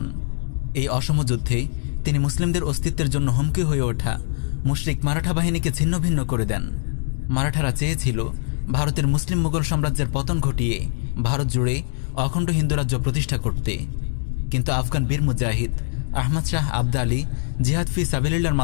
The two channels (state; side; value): silent; right; digital silence